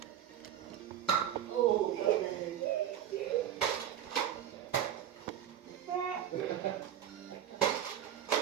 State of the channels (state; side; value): quieter; left; 10.3 dB